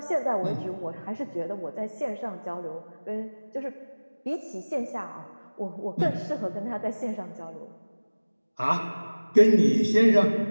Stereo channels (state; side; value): inverted; both; correlation -1.00